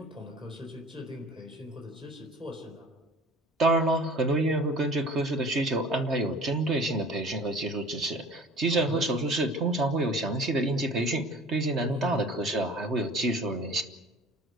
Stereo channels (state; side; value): normal; both; correlation 0.45